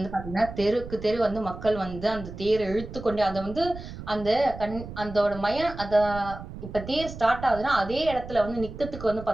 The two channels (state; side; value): noise; right; rumble, 12 dB below the sound